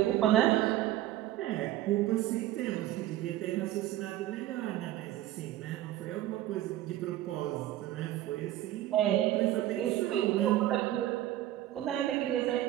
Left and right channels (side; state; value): left; quieter; 14.1 dB